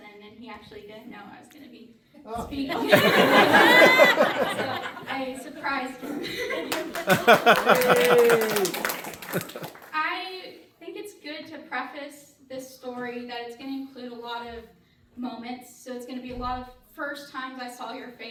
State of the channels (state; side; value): identical; both; correlation 1.00